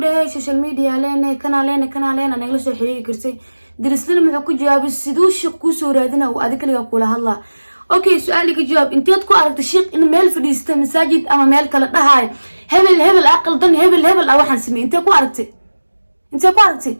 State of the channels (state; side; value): inverted; both; correlation -1.00